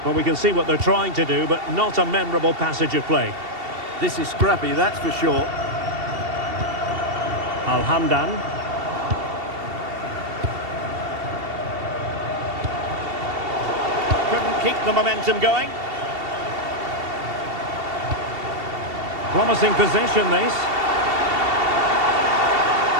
Well, we can see what they're trying to do, but not a memorable passage of play. This is scrappy, that's for sure. Al-Hamdan. Couldn't keep the momentum going. Promising position, this.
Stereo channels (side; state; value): left; late; 2.7 ms